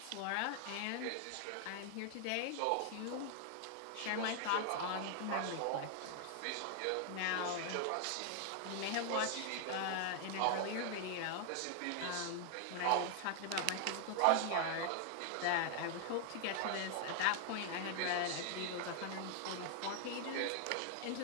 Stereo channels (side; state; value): both; different; correlation 0.00